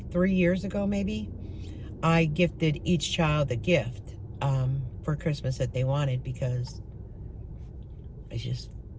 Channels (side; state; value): both; identical; correlation 1.00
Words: years ago maybe, I gifted each child a gift for Christmas that they wanted, because I just